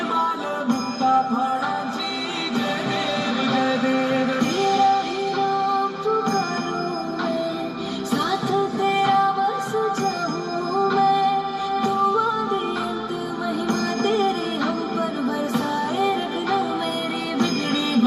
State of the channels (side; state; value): both; identical; correlation 1.00